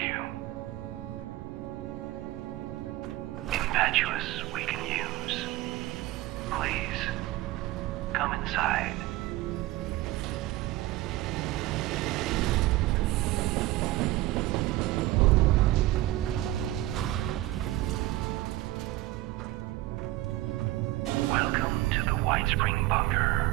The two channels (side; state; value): left; quieter; 17.0 dB